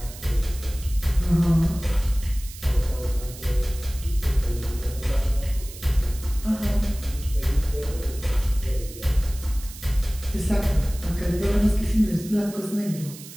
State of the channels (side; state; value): right; noise; hiss, 16 dB below the sound